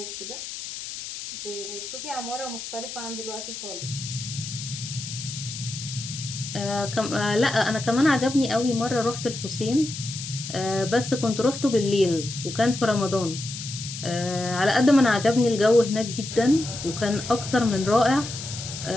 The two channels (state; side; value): noise; left; hiss, 9 dB below the sound